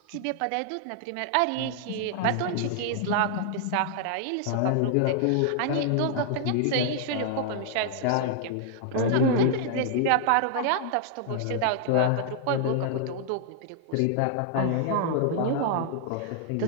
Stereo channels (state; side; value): different; both; correlation -0.01